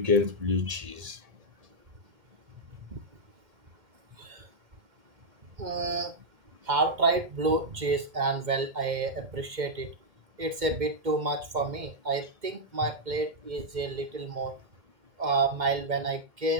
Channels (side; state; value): left; late; 2.1 ms